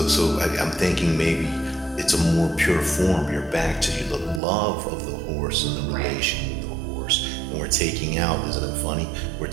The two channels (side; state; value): left; drops out; at 4.4 s